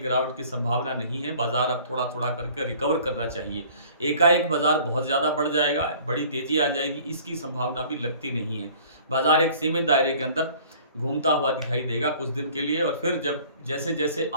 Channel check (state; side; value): inverted; both; correlation -0.51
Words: की संभावना नहीं है। बाजार अब थोड़ा थोड़ा करके रिकवर करना चाहिए। एकाएक बाजार बहुत ज़्यादा बढ़ जाएगा, बड़ी तेज़ी आ जाएगी, इसकी संभावना भी लगती नहीं है। बाजार एक सीमित दायरे के अंदर घूमता हुआ दिखाई देगा कुछ दिन के लिए, और फिर जब जैसे जैसे